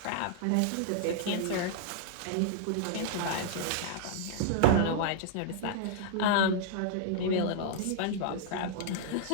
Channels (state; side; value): different; both; correlation -0.01